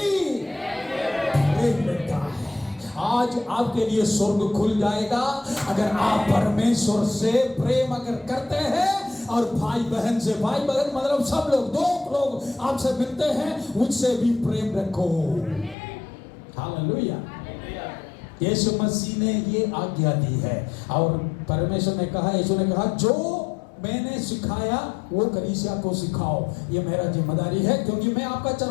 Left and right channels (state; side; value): drops out; right; at 15.8 s